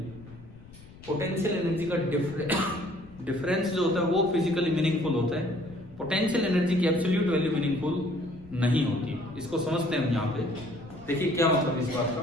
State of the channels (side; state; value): left; noise; rumble, 20 dB below the sound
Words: पोटेंशियल एनर्जी का डिफरेंस जो होता है वो फिजिकली मीनिंगफुल होता है, पोटेंशियल एनर्जी की एब्सोल्यूट वैल्यू मीनिंगफुल नहीं होती। इसको समझते हैं हम यहाँ पे। देखिए क्या मतलब इस बात का,